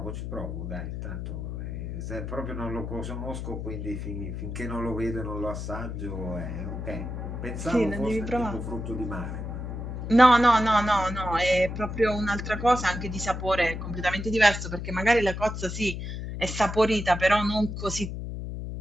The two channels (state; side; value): noise; left; hum, 6 dB below the sound